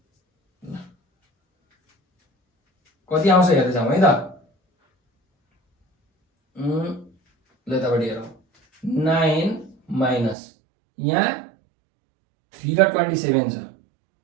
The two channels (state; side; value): drops out; left; at 10.4 s